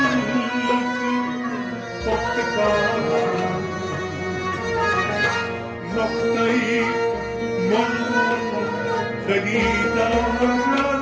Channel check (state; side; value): identical; both; correlation 1.00